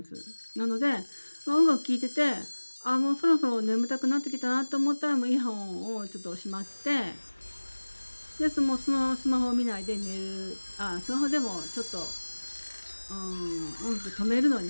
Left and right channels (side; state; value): both; inverted; correlation -1.00